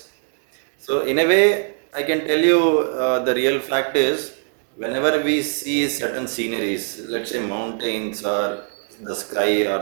So in a way, I can tell you, the real fact is, whenever we see certain sceneries, let's say mountains or the sky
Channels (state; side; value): silent; left; 58 dB below the other